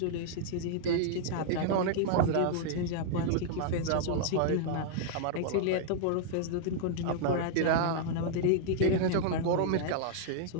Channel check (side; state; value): both; different; correlation -0.01